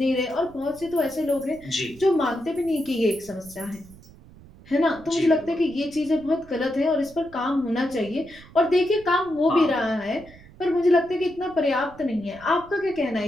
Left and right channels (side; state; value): right; noise; rumble, 22 dB below the sound